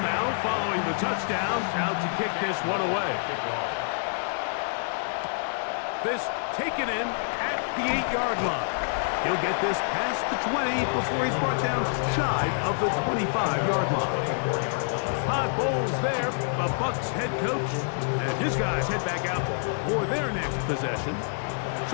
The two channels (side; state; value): right; silent; digital silence